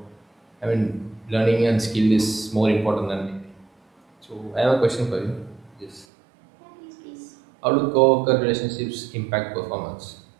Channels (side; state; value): left; drops out; at 6.1 s